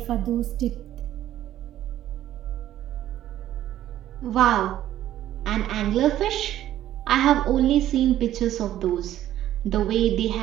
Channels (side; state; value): left; quieter; 12.6 dB